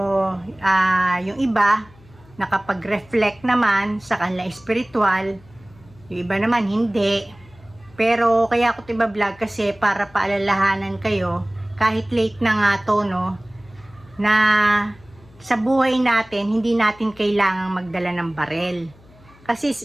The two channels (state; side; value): noise; left; hum, 26 dB below the sound